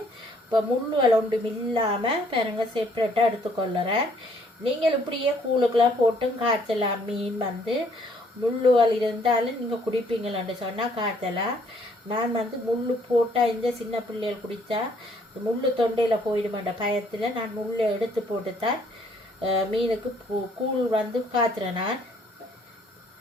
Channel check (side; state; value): both; normal; correlation 0.64